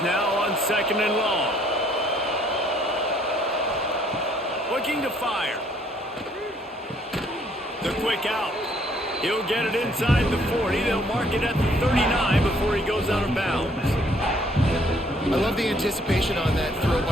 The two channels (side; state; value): both; normal; correlation 0.64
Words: now on 2nd and long. Looking to fire. The quick out. He'll get it inside the 40. They'll mark it at the 39 before he goes out of bounds. I love the anticipation on that throw